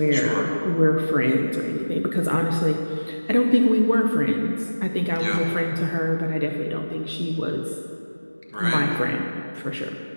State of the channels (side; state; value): both; inverted; correlation -1.00